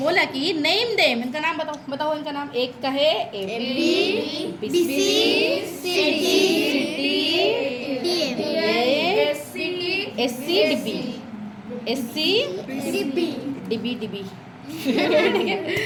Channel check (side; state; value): both; identical; correlation 1.00